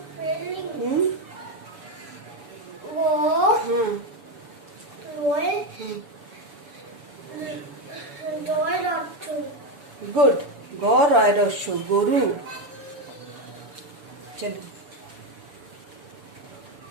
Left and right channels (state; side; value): late; left; 7.0 ms